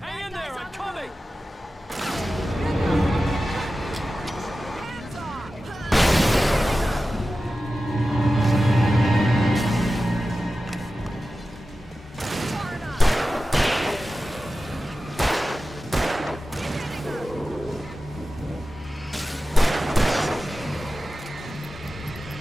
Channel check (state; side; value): normal; both; correlation 0.94